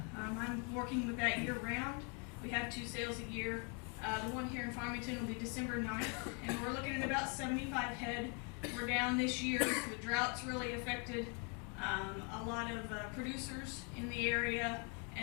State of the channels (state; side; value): quieter; right; 36.4 dB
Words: I'm working with that year round. We have 2 sales a year. The one here in Farmington will be December 9th, and we're looking at about 75 head. We're down this year. The drought's really affected a lot of producers in the area,